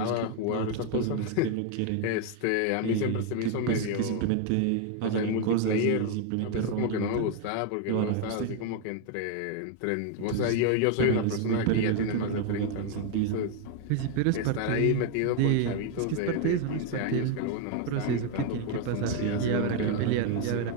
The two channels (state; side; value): different; both; correlation 0.01